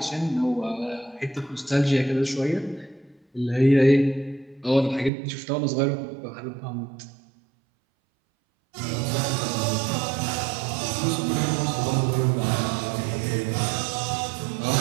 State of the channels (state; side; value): drops out; left; at 5.1 s